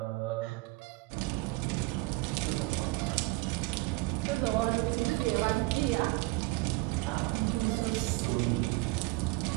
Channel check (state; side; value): quieter; left; 22.1 dB